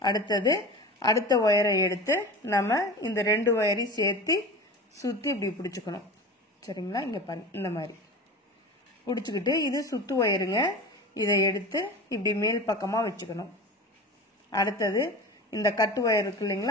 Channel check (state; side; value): normal; both; correlation 0.32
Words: அடுத்தது அடுத்த ஒயரை எடுத்து நம்ம இந்த 2 ஒயரையும் சேர்த்து சுற்றி இப்படி பிடிச்சிக்கணும். சரிங்களா? இங்கே பாருங்க, இந்த மாதிரி பிடிச்சிக்கிட்டு இது சுத்து ஒயருங்க. இதை எடுத்து இப்படி மேல் பக்கமாக வச்சுக்கணும். அடுத்தது இந்த கட்டு ஒயர் இருக்கு